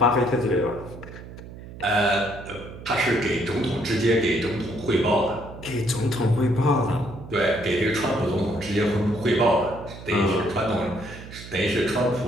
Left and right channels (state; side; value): noise; right; hum, 14 dB below the sound